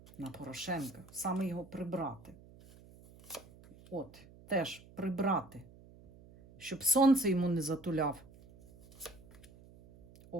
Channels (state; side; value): noise; right; hum, 22 dB below the sound